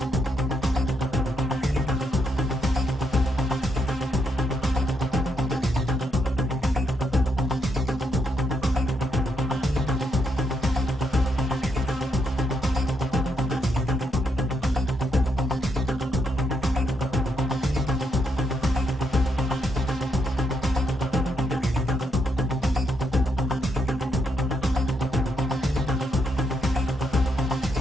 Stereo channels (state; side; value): normal; both; correlation 0.78